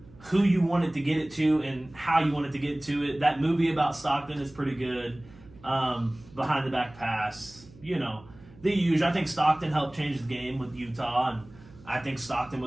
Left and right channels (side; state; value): right; noise; hum, 23 dB below the sound